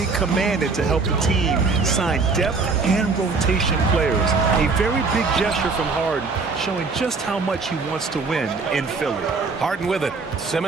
commanded to help the team sign depth and rotation players. A very big gesture from Harden, showing just how much he wants to win in Philly. Harden with it.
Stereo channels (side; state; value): left; quieter; 4.3 dB